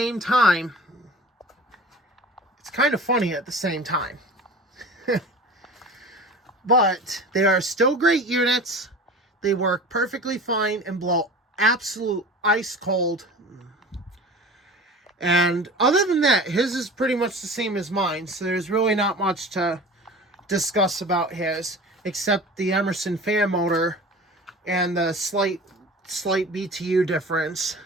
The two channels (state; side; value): normal; both; correlation 0.38